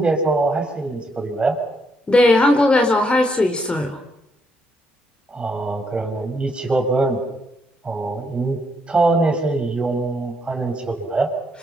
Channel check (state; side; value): normal; both; correlation 0.75